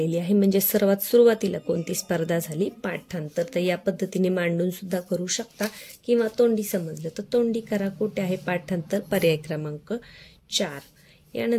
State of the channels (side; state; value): both; identical; correlation 1.00